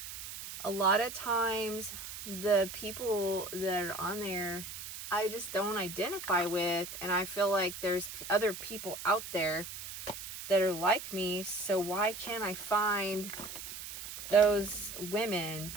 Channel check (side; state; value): right; noise; hiss, 10 dB below the sound